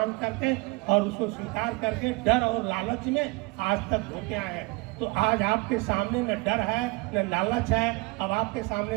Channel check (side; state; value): left; quieter; 25.8 dB